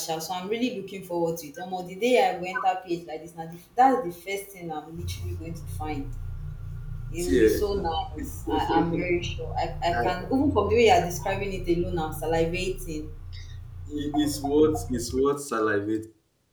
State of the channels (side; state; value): both; identical; correlation 1.00